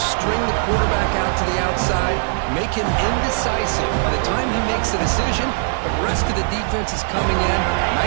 string the quarterback out to the outside, make him indecisive. By the time he makes a decision, the rest of the defense is coming in.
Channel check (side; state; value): left; silent; digital silence